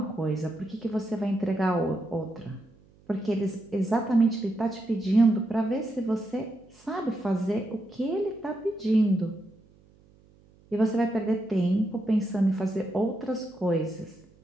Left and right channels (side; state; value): right; noise; hum, 29 dB below the sound